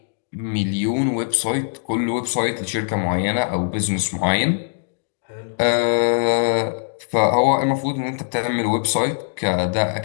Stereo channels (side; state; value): right; silent; 65 dB below the other